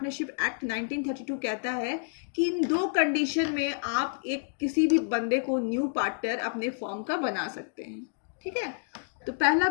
एक्ट 1932 कहता है कि इन दो कंडीशन में आप एक किसी भी बंदे को न्यू पार्टनर अपने फॉर्म का बना सकते हैं। ठीक है, तो पहला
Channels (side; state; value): right; silent; digital silence